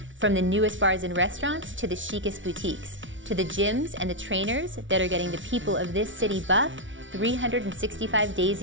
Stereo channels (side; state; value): left; late; 0.56 ms